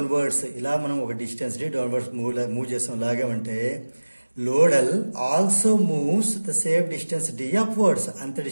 ఇలా మనం ఒక డిస్టెన్స్ డి డౌన్వర్డ్స్ మూవ్ చేస్తాం లాగామంటే load L also moves the same distance D upwards. అంత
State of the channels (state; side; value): inverted; both; correlation -1.00